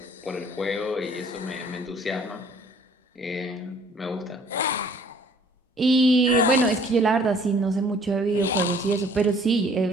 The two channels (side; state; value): both; normal; correlation 0.56